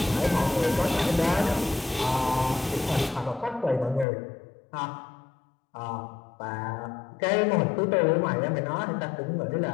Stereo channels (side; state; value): right; drops out; at 4.0 s